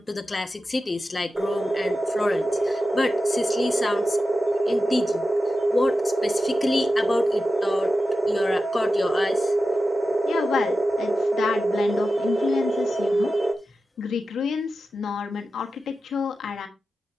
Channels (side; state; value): both; normal; correlation 0.92